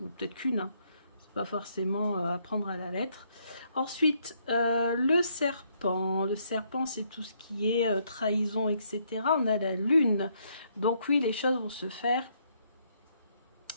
peut-être qu'une. Hein. C'est pas forcément à prendre à la lettre. Ensuite, le serpent. Le serpent, c'est tout ce qui est trahison, etc. On a la lune. Donc oui, les choses vont se faire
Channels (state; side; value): inverted; both; correlation -0.72